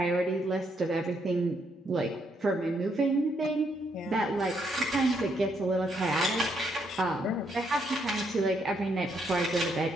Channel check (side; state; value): both; normal; correlation 0.75